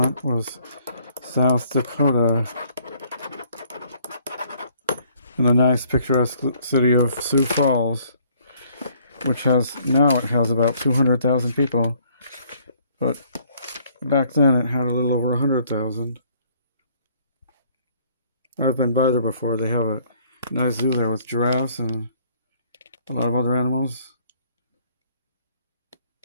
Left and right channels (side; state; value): both; inverted; correlation -0.62